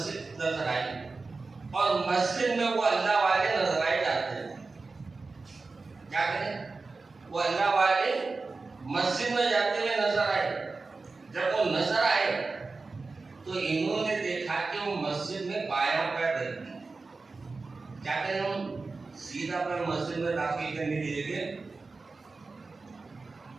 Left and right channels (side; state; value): left; quieter; 3.9 dB